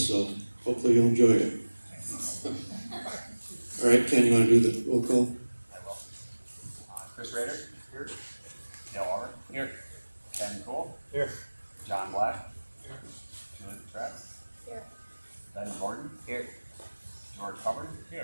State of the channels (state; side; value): inverted; both; correlation -1.00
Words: so hopefully you'll enjoy it. All right, Ken, you want to do the roll call? I will. Chris Rader? Here. Dale Auburn? Here. Ken Cole? Here. John Black? Here. Julie Trapp? Here. Ben Gordon? Here. George Hubbard?